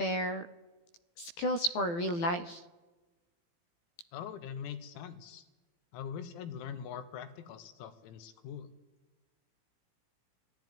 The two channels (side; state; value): right; late; 18 ms